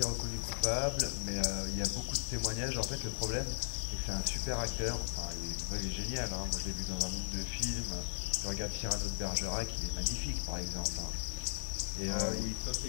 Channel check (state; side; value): silent; right; 53 dB below the other